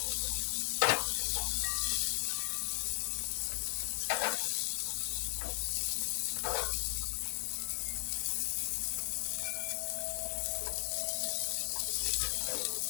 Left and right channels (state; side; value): silent; right; 53 dB below the other